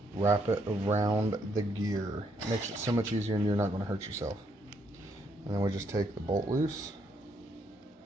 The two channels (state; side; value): normal; both; correlation 0.73